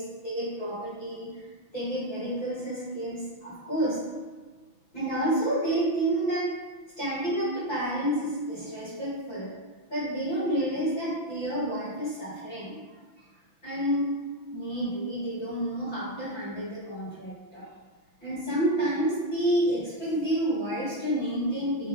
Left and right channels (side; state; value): right; late; 5.9 ms